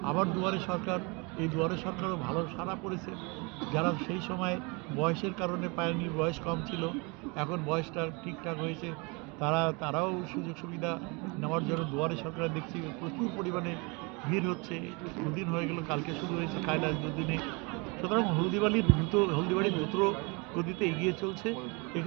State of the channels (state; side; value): quieter; left; 29.3 dB